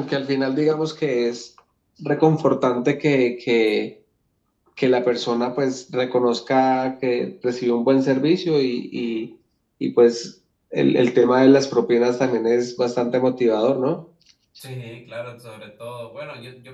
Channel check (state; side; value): identical; both; correlation 1.00